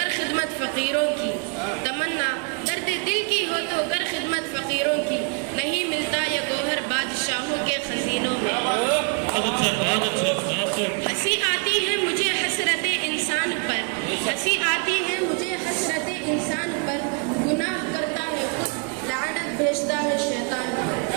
खिदमत फकीरों की, तमन्ना दर्द दिल की हो तो कर खिदमत फकीरों की, नहीं मिलता ये गौहर बादशाहों के खजीनों में। हंसी आती है मुझे हसरत इंसान पर, हंसी आती है मुझे हसरत इंसान पर, गुनाह करता है खुद लानत भेजता है शैतान पर।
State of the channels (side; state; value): left; quieter; 37.0 dB